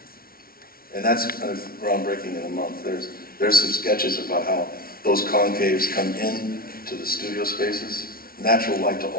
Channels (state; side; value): late; right; 0.43 ms